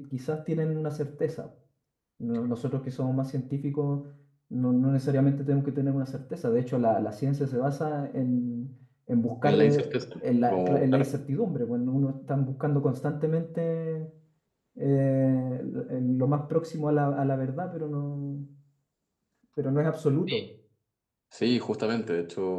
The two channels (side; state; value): both; identical; correlation 1.00